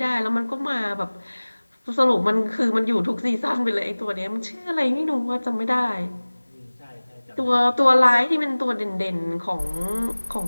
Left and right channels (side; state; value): both; inverted; correlation -1.00